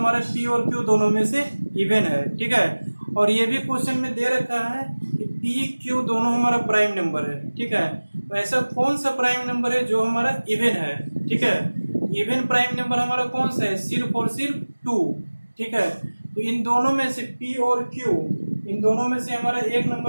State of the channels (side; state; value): both; inverted; correlation -1.00